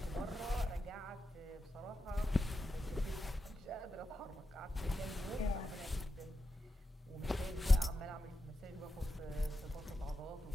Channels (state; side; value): normal; both; correlation 0.88